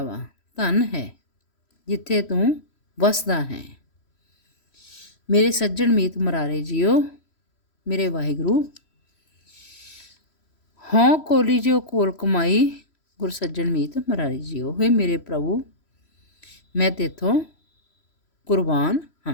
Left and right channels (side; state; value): right; late; 3.1 ms